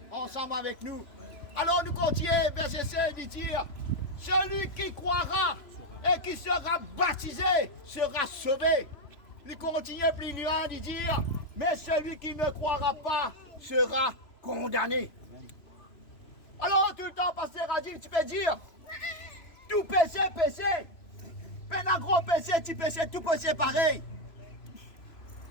ensemble avec nous. Alors nous continuons, verset 7, il dit, celui qui croira et qui sera baptisé sera sauvé. Il continue plus loin de dire, mais celui qui ne croira pas sera condamné. Alors tout le temps, pasteur a dit, tu peux dire, tout péché, péché. Mais un gros péché, petit péché, tout péché pareil.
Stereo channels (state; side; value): late; right; 3.0 ms